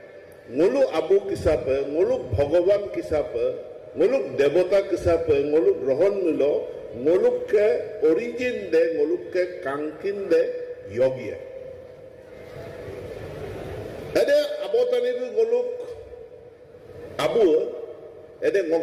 Nguluk abu kisape, nguluk bhagavan kisape, nguluk devata kisape, nguluk rohon milo, nguluk ke origin de, nguluk ke kankin de yogi. Ada abotani itu nguluk abu, ada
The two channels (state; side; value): identical; both; correlation 1.00